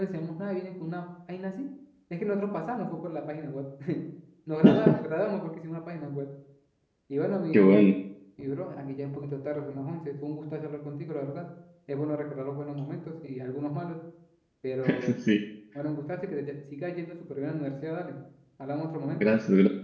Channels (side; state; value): both; identical; correlation 1.00